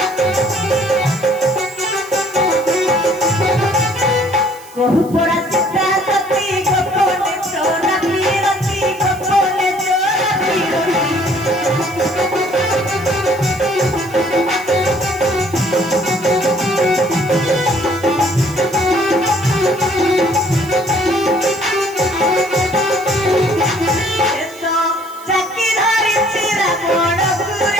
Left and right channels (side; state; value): right; noise; hiss, 21 dB below the sound